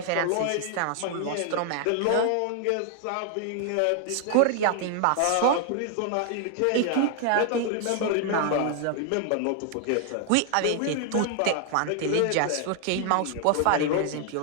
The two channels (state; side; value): different; both; correlation 0.00